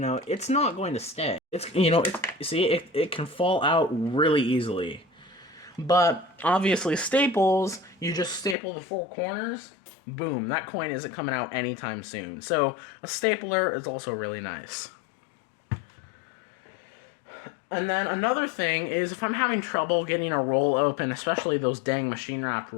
it's not going to stay. It's, you know, it can fall out really easily. But obviously staples, you just staple the 4 corners, boom, that coin isn't coming out anytime soon. So a stapler is also really nice. And then another thing is if I'm having trouble getting a roll open, especially those dang machine wrap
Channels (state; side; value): drops out; right; at 8.6 s